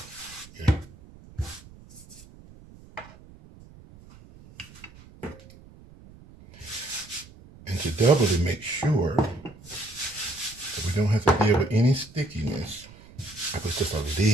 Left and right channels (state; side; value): noise; right; rumble, 21 dB below the sound